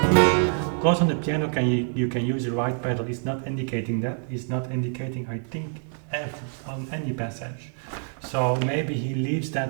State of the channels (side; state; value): left; silent; 61 dB below the other